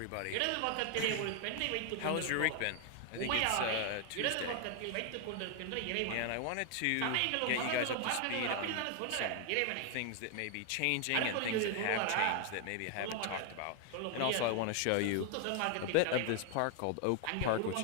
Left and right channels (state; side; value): different; both; correlation 0.00